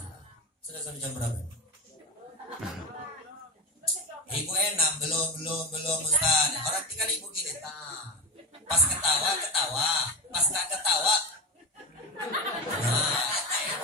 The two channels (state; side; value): normal; both; correlation 0.18